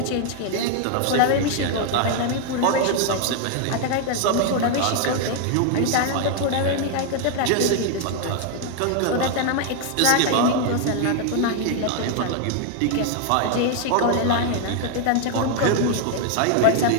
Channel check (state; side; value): different; both; correlation 0.00